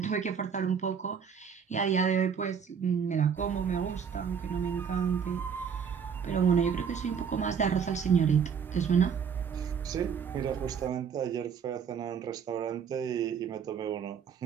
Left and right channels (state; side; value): quieter; left; 7.0 dB